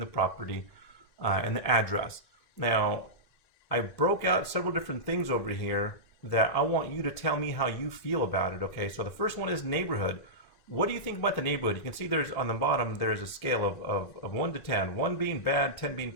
property, and the address. Now, I broke out several different things over here that I want you to tell me how you feel about it. Okay, so the first one is neighborhood. What do you think about the neighborhood? You can see there's on the bottom there's a scale of 1 to 10, 1 being bad, 10 being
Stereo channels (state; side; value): late; right; 1.8 ms